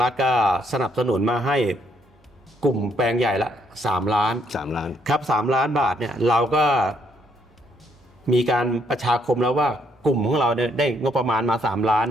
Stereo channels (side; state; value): both; normal; correlation 0.70